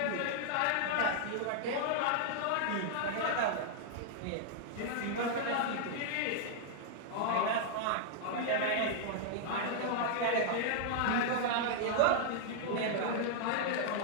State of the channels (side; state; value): both; different; correlation -0.01